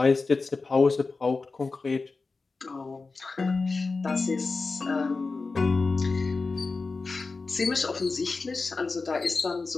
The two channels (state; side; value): quieter; right; 4.0 dB